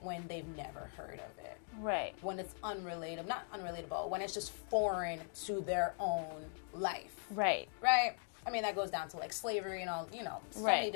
they've never heard of it. Right. When it's not unrelatable, when it's just foreign to their own life. Right. Right? I mean, that goes down to like slavery and all, so Right. many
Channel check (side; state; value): right; silent; 51 dB below the other